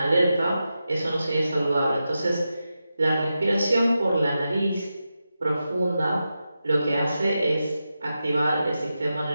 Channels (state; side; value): inverted; both; correlation -0.90